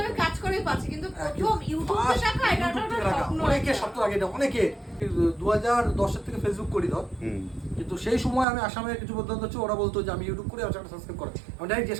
আমি কাজ করেই পাচ্ছি, কিন্তু প্রথম ইউটিউবে টাকা, এটা একটা স্বপ্ন। অনেকে স্বপ্ন লাগে এটা, অনেকে 2010 থেকে ফেসবুক করি ধর, হুম। কিন্তু সেই সময় আমি আসামের কিছু বন্ধু হচ্ছে, ওরা বলতো যে আমি ইউটিউব করে আমার চ্যানেল সাবস্ক্রাইব করে। আমি ডাইরেক্ট জিজ্ঞেস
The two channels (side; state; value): left; drops out; at 8.5 s